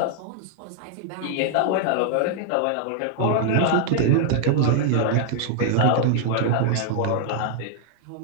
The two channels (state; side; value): different; both; correlation -0.01